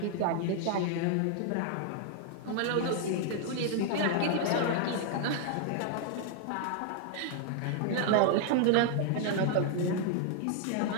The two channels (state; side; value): different; both; correlation 0.00